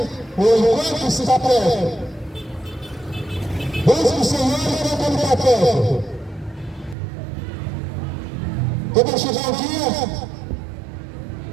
enquanto está perto. Busque o Senhor enquanto Ele está perto. Quando vai chegar o dia,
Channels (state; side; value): drops out; left; at 7.0 s